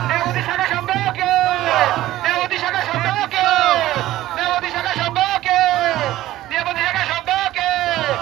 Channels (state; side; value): quieter; left; 15.1 dB